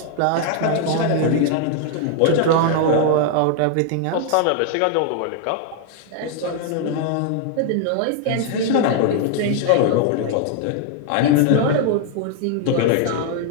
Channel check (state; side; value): different; both; correlation 0.00